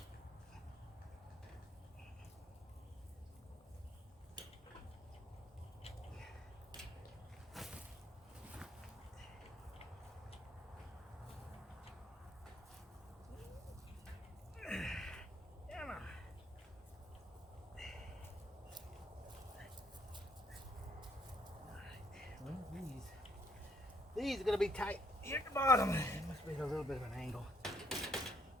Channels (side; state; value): both; normal; correlation 0.69